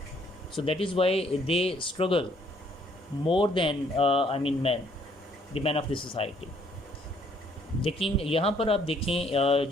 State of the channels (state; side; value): normal; both; correlation 0.64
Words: so that is why they struggle more than men, the men of the society. लेकिन यहाँ पर आप देखें